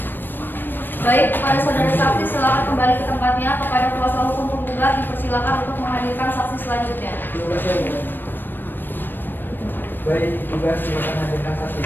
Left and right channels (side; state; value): right; late; 0.094 ms